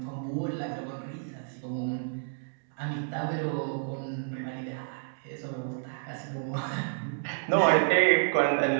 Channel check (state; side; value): silent; left; digital silence